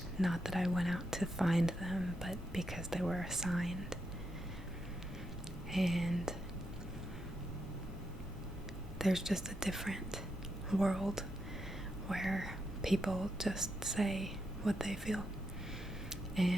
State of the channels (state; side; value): normal; both; correlation 0.83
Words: Not that I went out to find them, but because they were assigned. And there's just a different world where people just say what they feel.